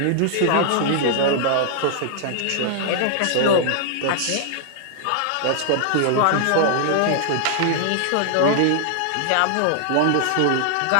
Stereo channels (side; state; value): both; different; correlation -0.01